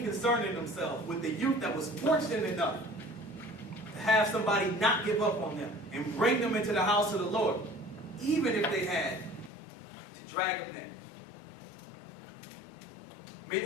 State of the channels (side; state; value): right; drops out; at 9.5 s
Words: concerning themselves with the youth that was fortunate enough to have somebody not give up on them and bring them into the house of the Lord, even if they had to drag them there. Many